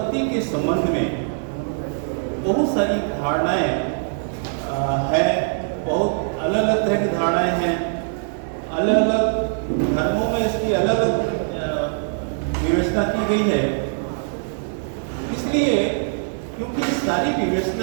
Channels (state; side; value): silent; left; digital silence